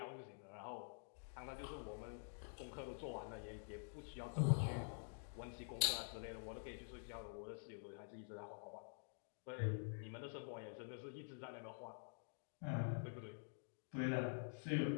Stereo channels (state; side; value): silent; right; digital silence